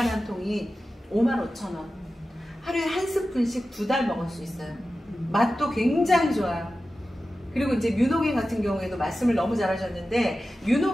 통이 55,000원. 하루에 한 스푼씩 2달 먹을 수 있어요. 맛도 굉장히 좋아요. 그리고 이제 뮤노겐 같은 경우에도 말씀을 너무 잘하셨는데,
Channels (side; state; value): both; normal; correlation 0.94